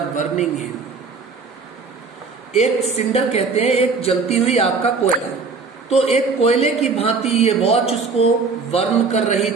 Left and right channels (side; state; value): left; quieter; 4.6 dB